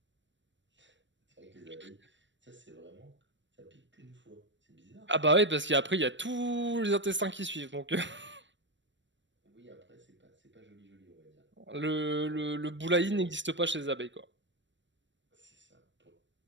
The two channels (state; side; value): late; left; 0.53 ms